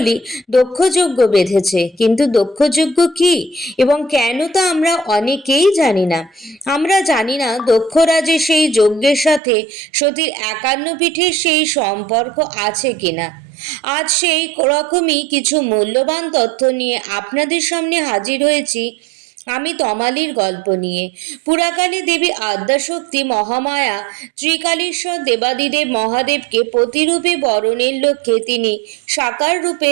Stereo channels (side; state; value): left; drops out; at 9.4 s